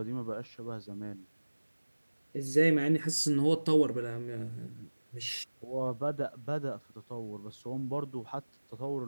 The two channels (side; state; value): both; inverted; correlation -1.00